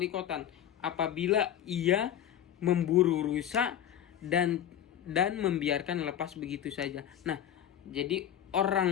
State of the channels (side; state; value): right; quieter; 10.6 dB